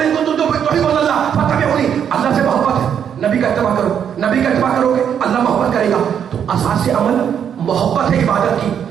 ان کنتم تحبون اللہ فاتبعونی. اللہ سے محبت ہے، نبی کا اتباع کرو. نبی کا اتباع کرو گے اللہ محبت کرے گا. تو اساس عمل محبت ہے عبادت کی،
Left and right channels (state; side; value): quieter; left; 8.4 dB